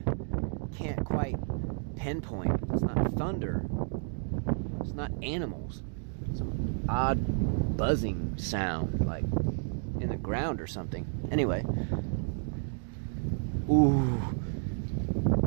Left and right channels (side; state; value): left; silent; 57 dB below the other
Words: can't quite pinpoint. It's not thunder. It's not animals. Some odd buzzing sound, like in the ground or something. Anyway. Ooh.